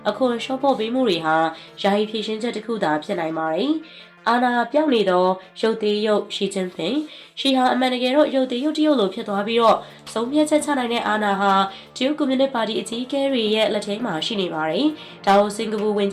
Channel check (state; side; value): identical; both; correlation 1.00